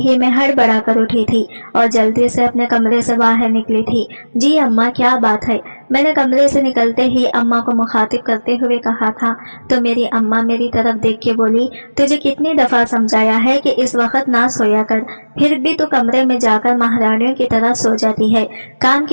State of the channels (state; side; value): inverted; both; correlation -1.00